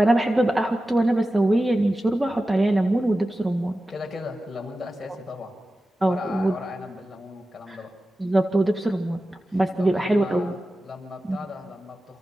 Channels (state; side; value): normal; both; correlation 0.94